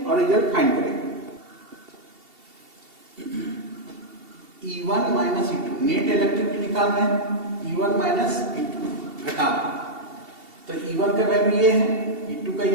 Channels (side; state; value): left; late; 2.7 ms